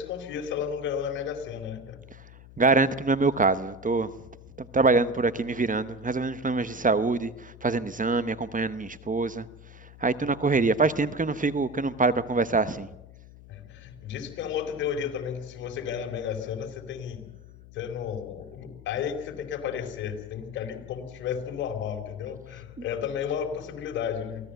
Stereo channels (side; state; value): left; noise; hum, 19 dB below the sound